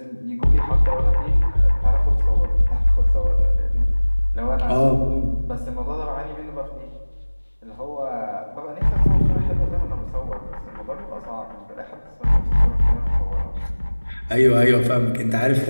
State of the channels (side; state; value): both; inverted; correlation -1.00